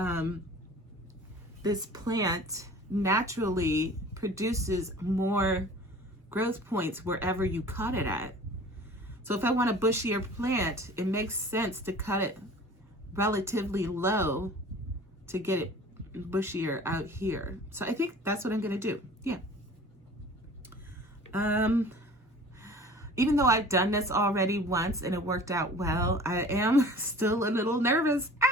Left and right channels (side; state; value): both; normal; correlation 0.44